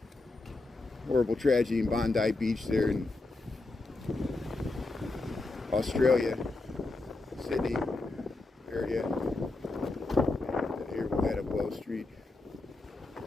horrible tragedy in Bondi Beach there in Australia, Sydney area. And here we'll head up Wells Street.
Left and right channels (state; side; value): quieter; right; 3.2 dB